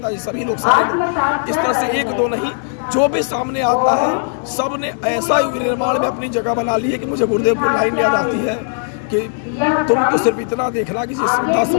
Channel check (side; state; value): right; silent; digital silence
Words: सभी लोग इस तरह से एक दो नहीं, जो भी सामने आता है सब ने ऐसा युग निर्माण में अपनी जगह बना ली है कि मुझे गुरुदेव की लाइन याद आती है कि तुम तो सिर्फ इतना देखना कि जिस श्रद्धा